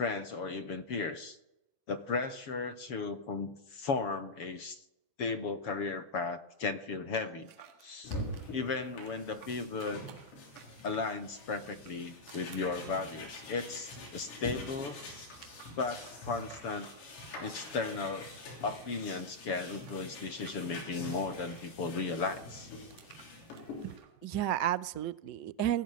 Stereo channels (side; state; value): right; late; 7.1 ms